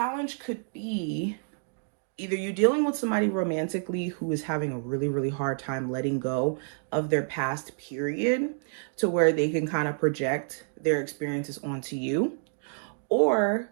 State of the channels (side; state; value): left; silent; 59 dB below the other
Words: could be either you dealing with somebody romantically who is having a really, really hard time letting go of their past period to where they can kind of project their experiences onto you. Or